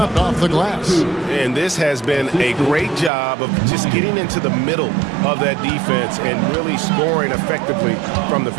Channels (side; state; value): left; drops out; at 3.1 s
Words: off the glass. And this has been a great job of just getting into the middle of that defense and really scoring effectively from the